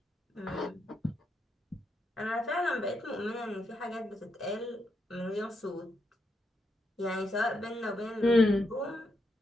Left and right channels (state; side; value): normal; both; correlation 0.82